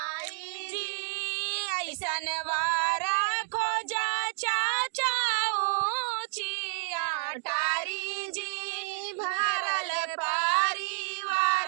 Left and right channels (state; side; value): silent; left; digital silence